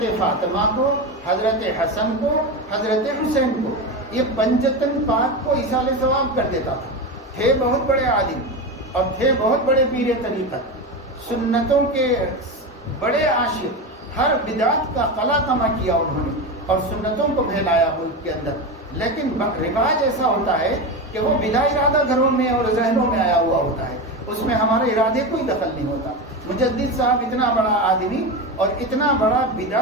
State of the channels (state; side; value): normal; both; correlation 0.19